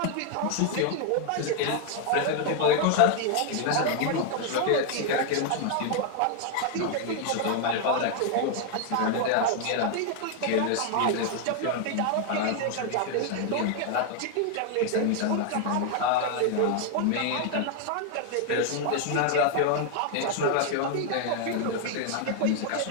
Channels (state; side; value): different; both; correlation 0.01